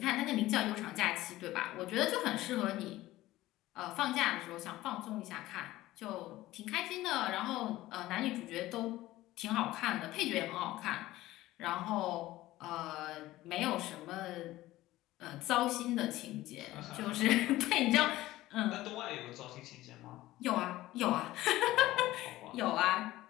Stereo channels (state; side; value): quieter; right; 16.6 dB